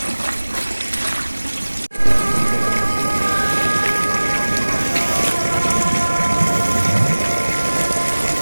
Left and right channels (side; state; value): both; inverted; correlation -1.00